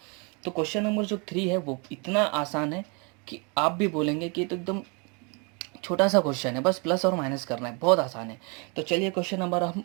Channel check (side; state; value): left; quieter; 32.9 dB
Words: तो क्वेश्चन नंबर जो 3 है वो इतना आसान है कि आप भी बोलेंगे कि ये तो एकदम छोटा सा क्वेश्चन है, बस प्लस और माइनस करना है, बहुत आसान है। तो चलिए क्वेश्चन नंबर